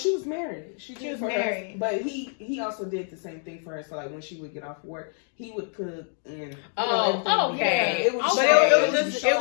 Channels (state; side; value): silent; right; 55 dB below the other